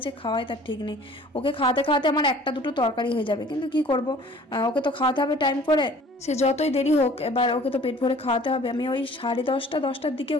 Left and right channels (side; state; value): both; normal; correlation 0.50